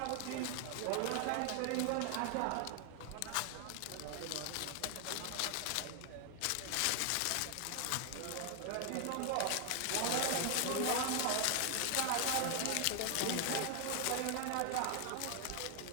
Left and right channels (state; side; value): different; both; correlation 0.00